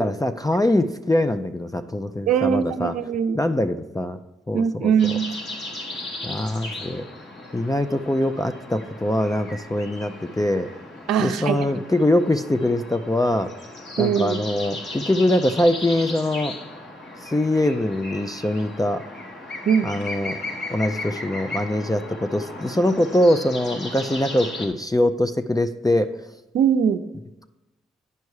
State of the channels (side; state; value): both; normal; correlation 0.80